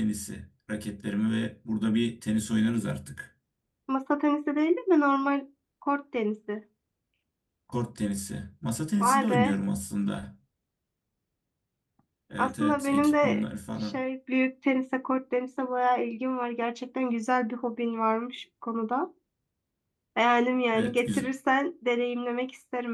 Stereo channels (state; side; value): identical; both; correlation 1.00